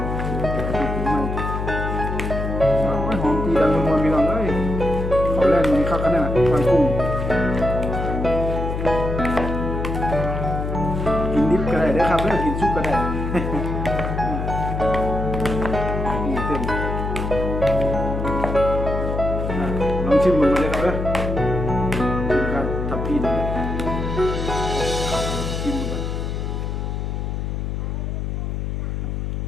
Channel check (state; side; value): noise; left; hum, 3 dB below the sound